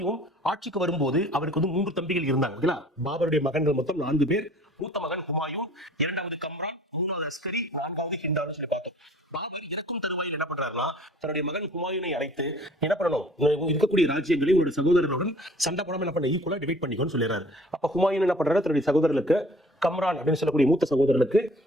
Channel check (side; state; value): both; normal; correlation 0.51